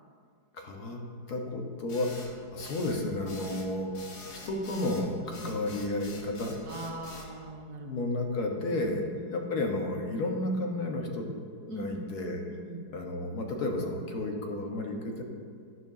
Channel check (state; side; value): late; right; 4.7 ms